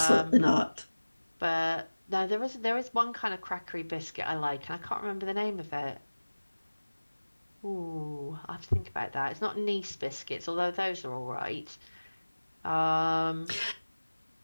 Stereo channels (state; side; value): inverted; both; correlation -1.00